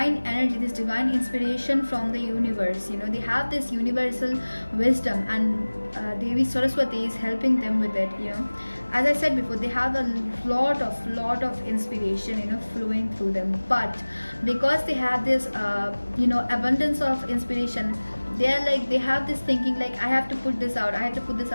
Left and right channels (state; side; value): inverted; both; correlation -1.00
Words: energy, this divine inspiration from the universe. They have this universal wisdom, and Devi Saraswati is helping them with it. As I said before, they have a lot of inspiration flowing through them. But because they have this abundance of inspiration, they are like, they have this thinking like, I have to put this out, I have to put this